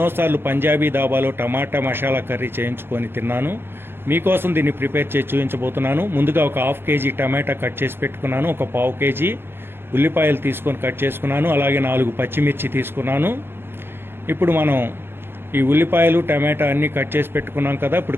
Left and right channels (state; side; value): late; left; 0.10 ms